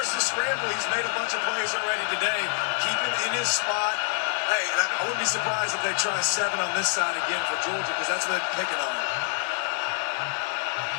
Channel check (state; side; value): silent; right; 61 dB below the other